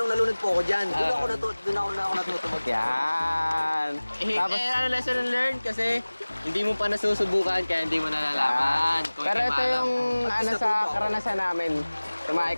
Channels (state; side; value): inverted; both; correlation -1.00